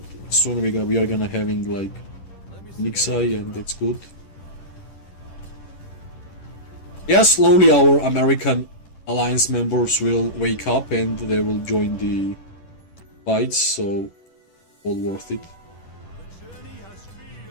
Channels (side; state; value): right; late; 11 ms